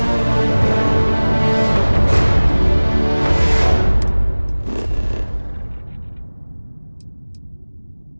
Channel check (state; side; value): inverted; both; correlation -1.00